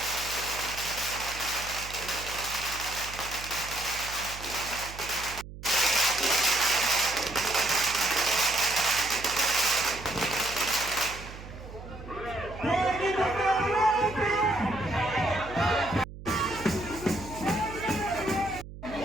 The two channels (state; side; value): noise; right; hum, 13 dB below the sound